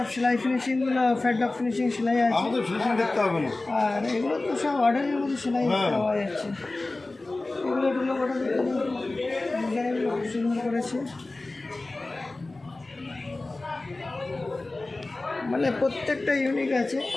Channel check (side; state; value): right; quieter; 3.1 dB